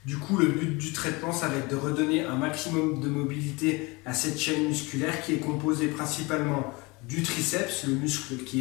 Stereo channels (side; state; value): right; quieter; 25.5 dB